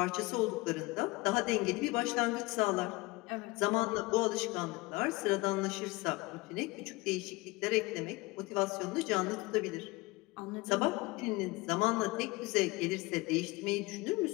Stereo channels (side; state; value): right; quieter; 22.9 dB